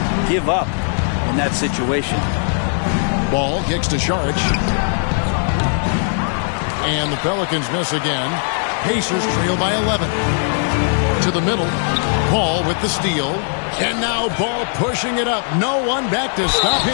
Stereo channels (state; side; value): silent; right; digital silence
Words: give up in that situation. Ball kicks to Saric. And the Pelicans miss again. Pacers trail by 11. To the middle. Ball with the steal. And now Ball pushing it up. No one back to stop